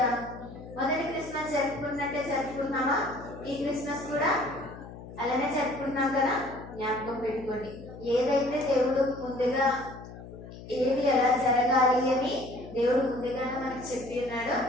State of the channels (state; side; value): noise; left; hum, 14 dB below the sound